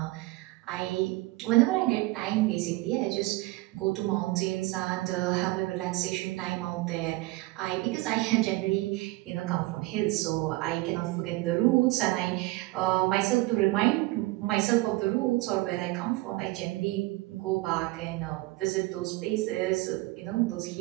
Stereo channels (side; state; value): left; quieter; 20.9 dB